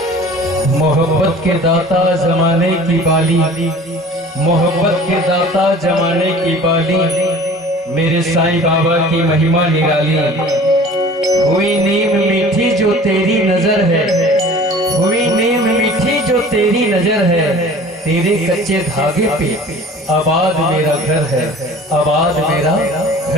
मोहब्बत के दाता जमाने की बाली, मोहब्बत के दाता जमाने की बाली, मेरे साईं बाबा की महिमा निराली। हुई नीम मीठी जो तेरी नजर है, हुई नीम मीठी जो तेरी नजर है, तेरे कच्चे धागे पे आबाद मेरा घर है, आबाद मेरा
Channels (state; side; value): normal; both; correlation 0.44